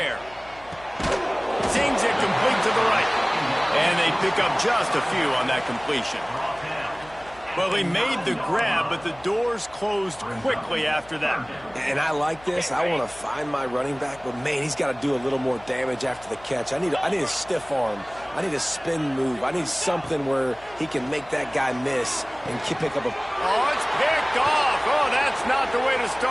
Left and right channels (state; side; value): noise; left; hum, 23 dB below the sound